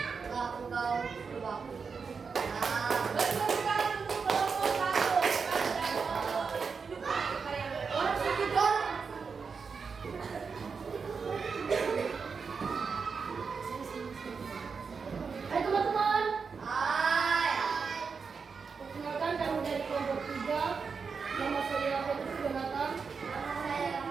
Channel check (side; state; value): left; quieter; 5.4 dB